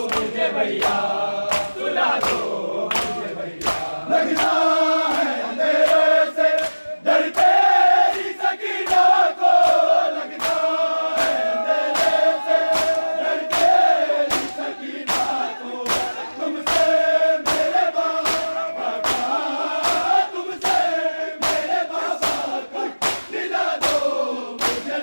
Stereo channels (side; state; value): both; inverted; correlation -1.00